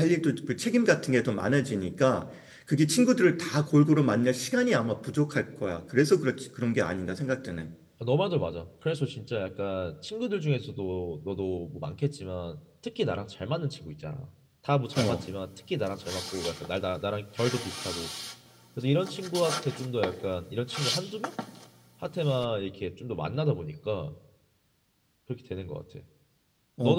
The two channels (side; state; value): both; identical; correlation 1.00